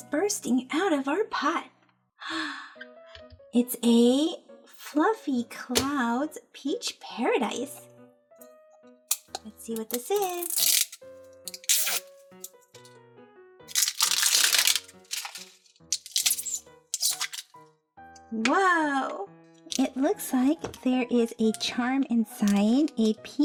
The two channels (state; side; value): identical; both; correlation 1.00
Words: bursting out of our pot? It's a Fluffy Clouds Peach Paradise. Let's see what this is. Whoa! It looks like there is a charm inside, a